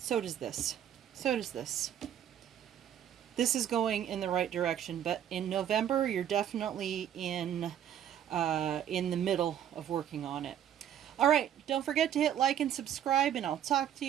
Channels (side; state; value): left; quieter; 10.2 dB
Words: does this. So does this. This is going in the right direction, but in November, you're definitely in the middle of working on it. All right, don't forget to hit like and subscribe, and I'll talk to